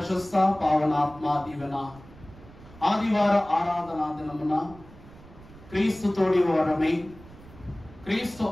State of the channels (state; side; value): noise; right; rumble, 21 dB below the sound